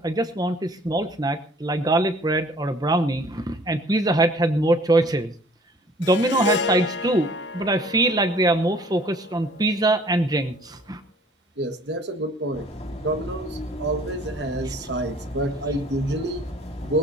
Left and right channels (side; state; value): both; normal; correlation 0.54